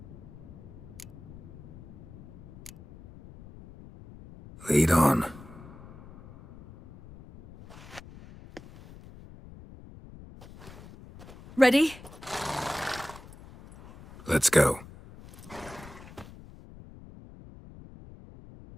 Lead on. Ready? Let's go.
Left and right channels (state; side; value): noise; left; rumble, 18 dB below the sound